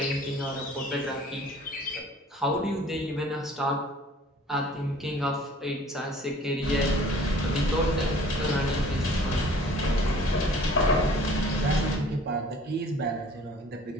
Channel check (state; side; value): normal; both; correlation 0.51